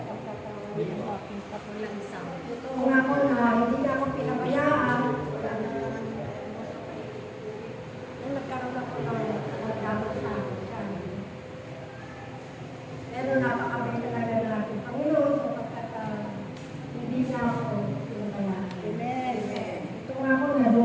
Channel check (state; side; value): identical; both; correlation 1.00